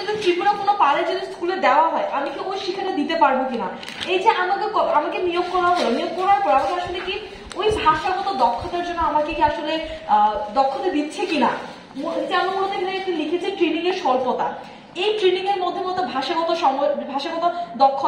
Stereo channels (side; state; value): both; identical; correlation 1.00